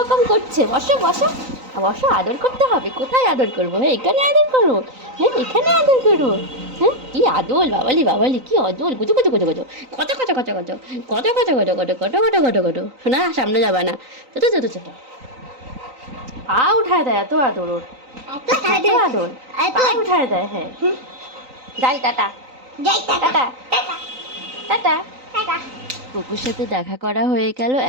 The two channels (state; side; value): late; left; 3.9 ms